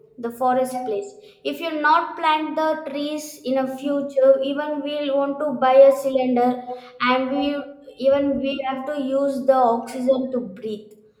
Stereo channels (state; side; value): identical; both; correlation 1.00